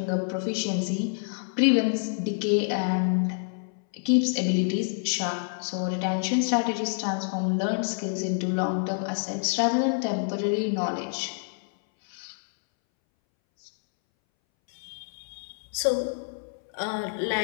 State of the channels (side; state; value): right; silent; 60 dB below the other